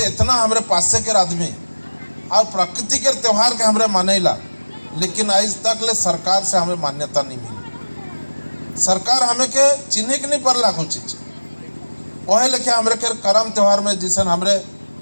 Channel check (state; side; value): inverted; both; correlation -1.00